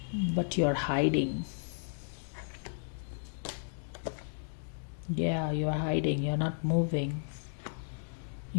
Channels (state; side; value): silent; right; digital silence